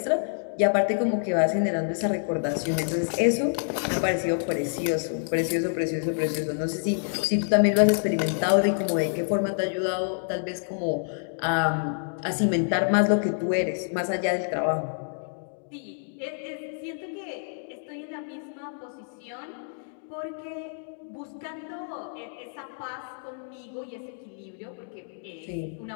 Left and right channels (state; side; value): silent; right; digital silence